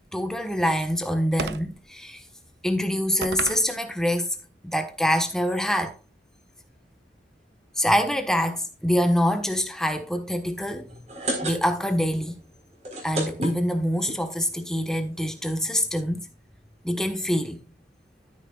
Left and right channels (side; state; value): both; normal; correlation 0.76